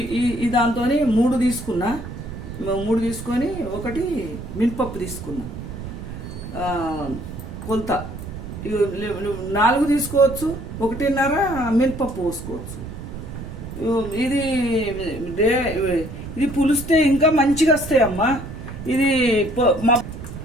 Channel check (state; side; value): noise; right; rumble, 10 dB below the sound